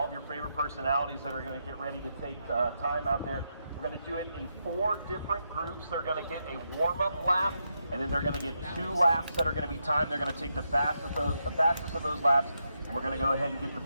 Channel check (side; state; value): both; inverted; correlation -0.82